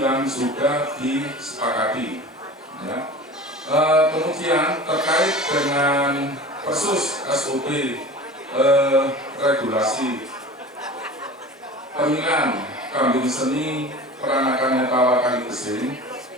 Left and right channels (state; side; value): normal; both; correlation 0.37